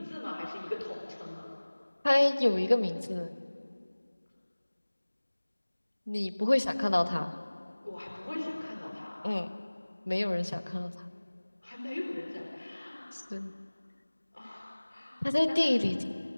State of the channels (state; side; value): inverted; both; correlation -1.00